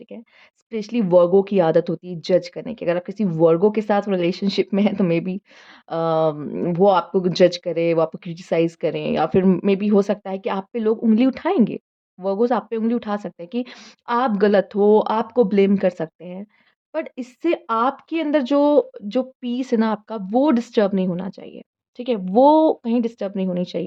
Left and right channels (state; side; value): identical; both; correlation 1.00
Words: ठीक है? स्पेशली वर्गों की आदत होती है जज करने की। अगर आप किसी वर्गों के साथ रिलेशनशिप में हैं तो मेबी वो आपको जज करें, वो आपको क्रिटिसाइज़ करें या फिर मेबी हो सकता है कि आप पे लोग उँगली उठाएँगे। वर्गोज़ आप पे उँगली उठा सकते हैं कि आप गलत हो, आपको ब्लेम कर सकते हैं। बट इससे आपके अंदर जो जो पीस है ना आपका, वो डिस्टर्ब नहीं होना चाहिए, ठीक है? वो कहीं डिस्टर्ब नहीं होनी